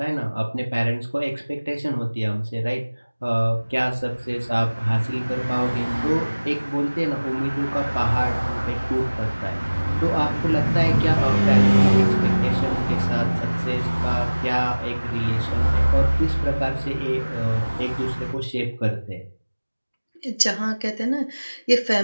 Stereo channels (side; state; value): both; inverted; correlation -1.00